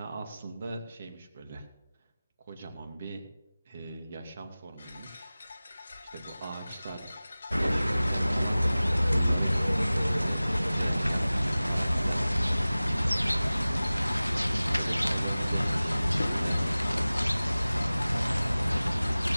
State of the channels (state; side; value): inverted; both; correlation -0.98